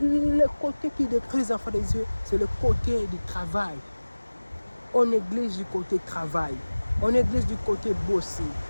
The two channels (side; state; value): both; inverted; correlation -1.00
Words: côté qui détruit les enfants des yeux, c'est le côté du travail. On néglige du côté travail. On néglige du côté bosser.